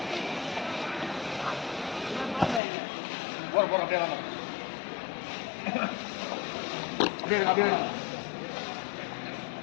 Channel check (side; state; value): right; drops out; at 2.6 s